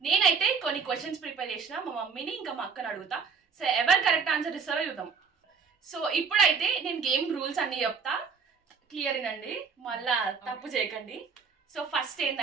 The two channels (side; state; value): left; quieter; 5.7 dB